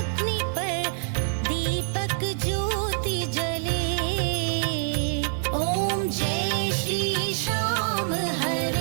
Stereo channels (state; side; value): silent; left; 60 dB below the other